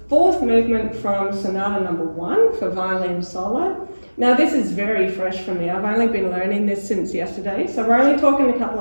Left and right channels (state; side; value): inverted; both; correlation -1.00